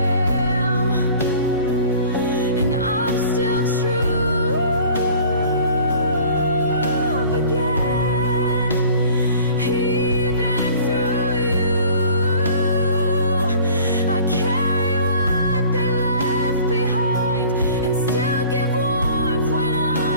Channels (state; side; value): inverted; both; correlation -0.48